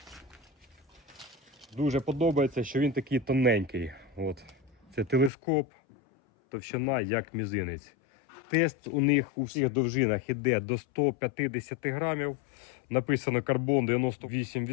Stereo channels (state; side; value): drops out; right; at 5.3 s